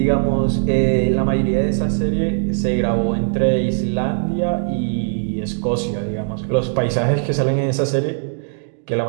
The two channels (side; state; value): left; silent; digital silence